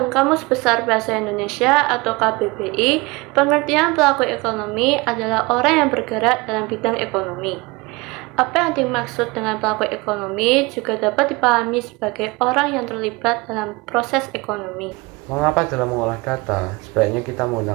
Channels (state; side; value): quieter; left; 24.8 dB